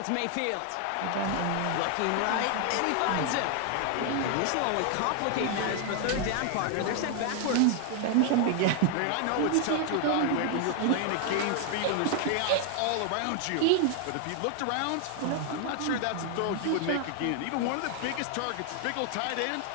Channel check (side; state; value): both; different; correlation 0.00